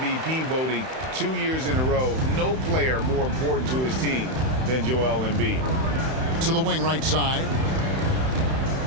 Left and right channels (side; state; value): left; late; 31 ms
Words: voting 2 years in a row, no player more important to his team than Joel Embiid. To the wing right side.